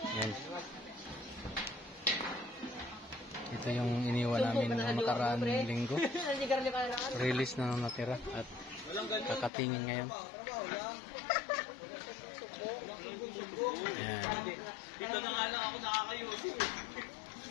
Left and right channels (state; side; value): drops out; right; at 9.5 s